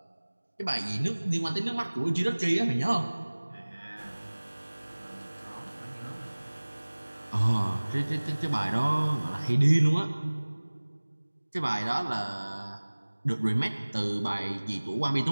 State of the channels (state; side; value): inverted; both; correlation -1.00